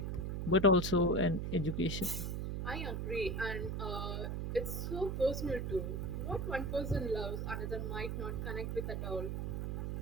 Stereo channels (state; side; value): noise; right; hum, 2 dB below the sound